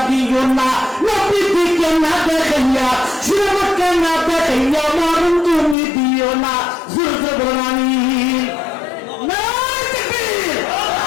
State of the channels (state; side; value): drops out; right; at 5.8 s